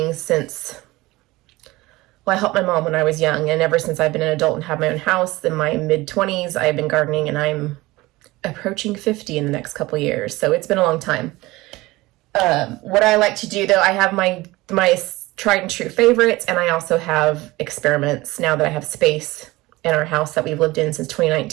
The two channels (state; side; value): quieter; left; 20.1 dB